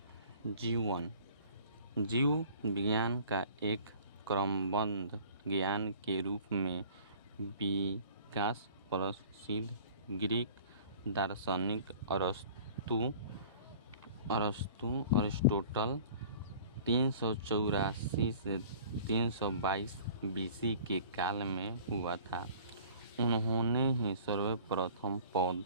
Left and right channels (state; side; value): inverted; both; correlation -0.47